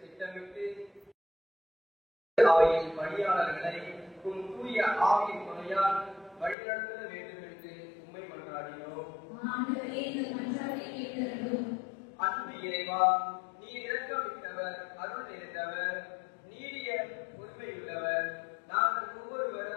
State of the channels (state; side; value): drops out; right; at 6.6 s